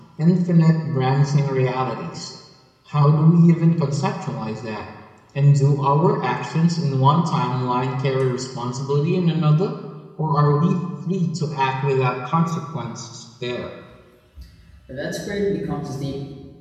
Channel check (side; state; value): both; identical; correlation 1.00